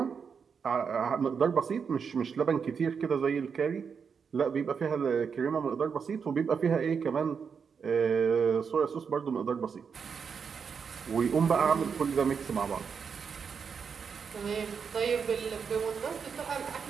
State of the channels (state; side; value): quieter; left; 6.2 dB